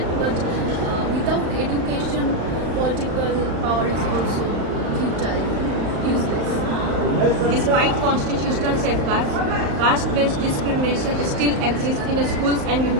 but without education, political power is also futile, useless. Despite constitutional safeguards, caste-based discrimination still exists in schools and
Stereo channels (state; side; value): late; left; 35 ms